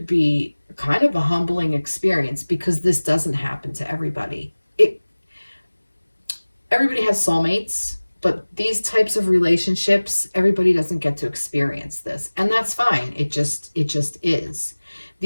be kind of a humbling experience, because this doesn't happen to everybody. Everybody has soulmates, but these types of relationships, everybody doesn't get to experience this, and that's fine. It just is.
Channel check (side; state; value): both; inverted; correlation -1.00